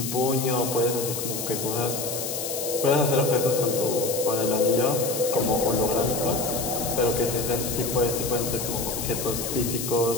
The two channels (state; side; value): noise; left; hiss, 5 dB below the sound